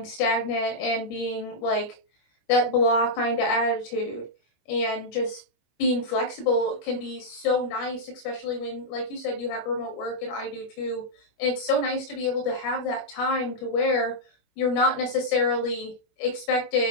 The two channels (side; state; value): right; late; 20 ms